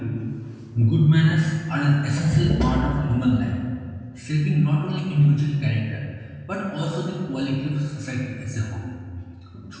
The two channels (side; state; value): both; identical; correlation 1.00